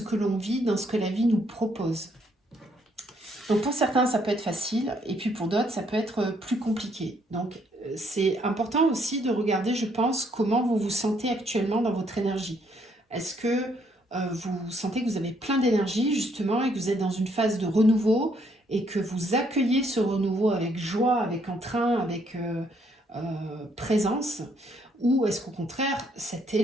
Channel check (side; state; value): both; normal; correlation 0.70